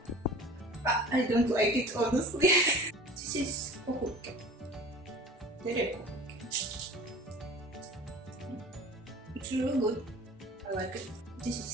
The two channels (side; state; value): both; normal; correlation 0.42